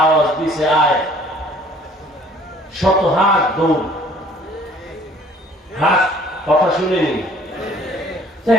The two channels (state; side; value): normal; both; correlation 0.55